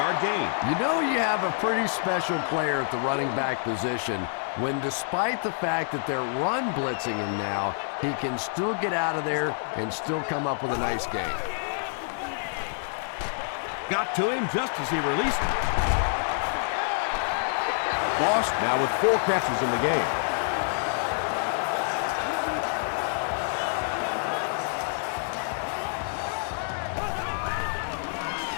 gain. You know you have a pretty special player at the running back position when, despite the fact that they're run blitzing him now, he can still get out of there and still come up with a nice gain. Got to him just as he released it. Lost now with 4 catches in the game.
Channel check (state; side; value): silent; right; 58 dB below the other